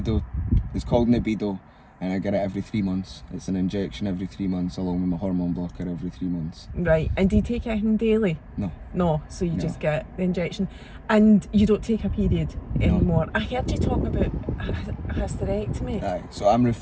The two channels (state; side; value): identical; both; correlation 1.00